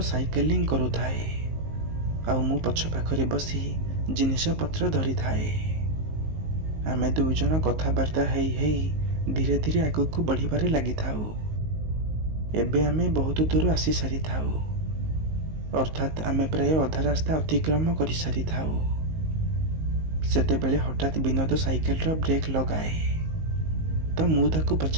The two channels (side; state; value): left; late; 19 ms